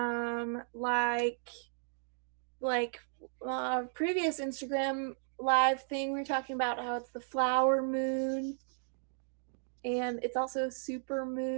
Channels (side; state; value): left; silent; digital silence